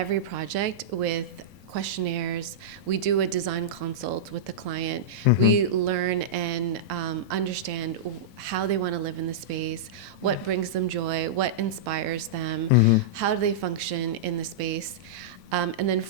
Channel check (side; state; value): both; normal; correlation -0.11